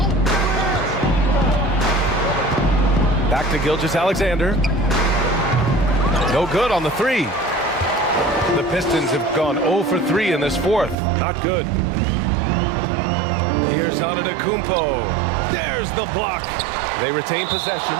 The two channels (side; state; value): left; drops out; at 11.0 s